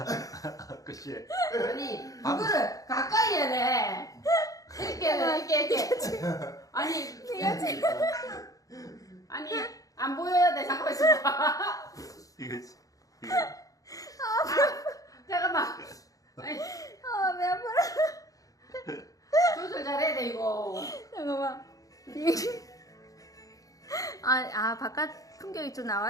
그치? 아니 그거를 가까이 해야 돼. 이렇게. 아니 아니 안 보여야 돼. 잠깐만 있어봐. 이거지. 잠깐만. 아니, 배 아파라. 조절 잘해야 돼 이거. 잠깐만. 바깥 풍경이 좀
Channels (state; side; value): late; right; 0.17 ms